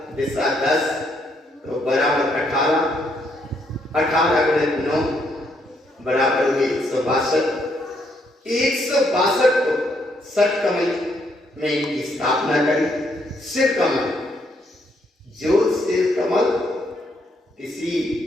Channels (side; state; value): both; normal; correlation 0.73